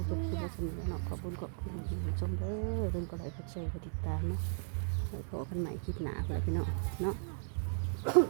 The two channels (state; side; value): silent; left; digital silence